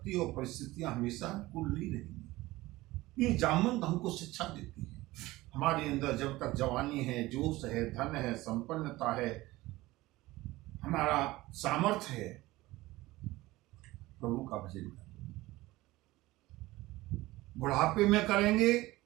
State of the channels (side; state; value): left; quieter; 18.8 dB